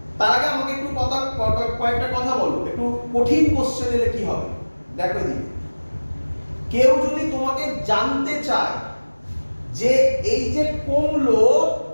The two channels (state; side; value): inverted; both; correlation -1.00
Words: তার আগে আমাকে একটু কয়েকটা কথা বলো, একটু কঠিন কোশ্চেন এলে কি হবে দেখো এদিকে। কেউ যদি তোমাকে জানতে চায় যে এই যে কমলো